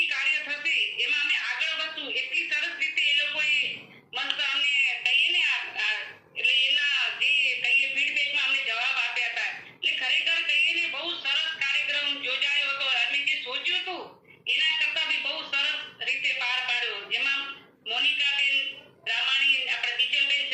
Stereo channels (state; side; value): identical; both; correlation 1.00